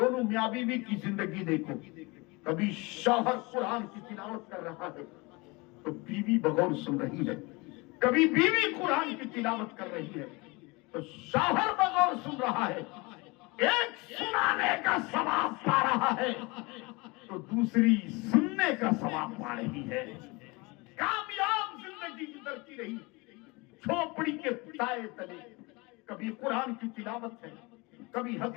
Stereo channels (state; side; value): quieter; right; 25.8 dB